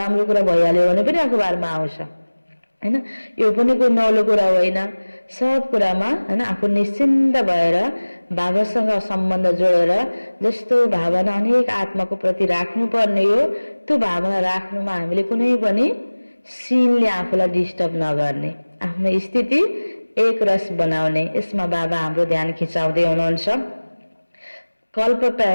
कुरा भइहाल्यो भने पनि अखबारमा आउँछ, हैन। यो पनि कुनै नौलो कुरा होइन। सब कुरामा, हैन, आफू निश्चिन्त भएर बाबासँग सम्बन्ध जोडेर जस्तो भावना अनेक आत्माको प्रति राख्नुपर्ने हो, त्यो भावना राख्नुमा हामीले कुनै पनि सिनले आफूलाई डिस्टर्ब नगर्ने, आफ्नो स्थिति एक रस बनाउने, यसमा बाबा हाम्रो ध्यान खिचाउँदै हुनुहुन्छ। कल्प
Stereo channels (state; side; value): inverted; both; correlation -1.00